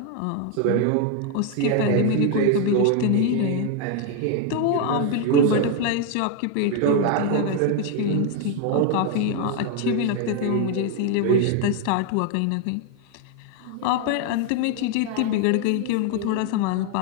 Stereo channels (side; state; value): both; different; correlation 0.01